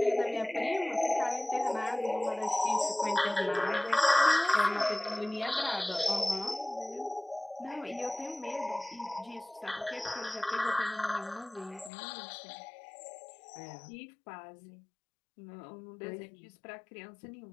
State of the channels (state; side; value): drops out; right; at 11.9 s